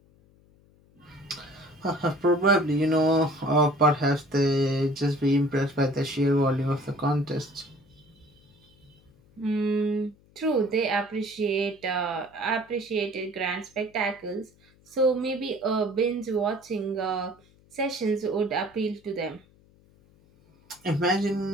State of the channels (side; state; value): left; noise; hum, 30 dB below the sound